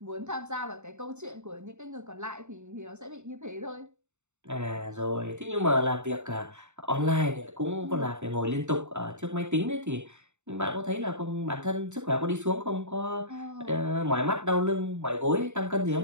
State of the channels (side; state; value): left; late; 0.83 ms